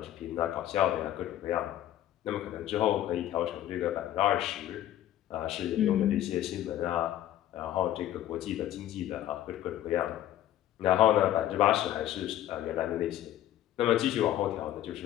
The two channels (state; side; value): quieter; right; 12.6 dB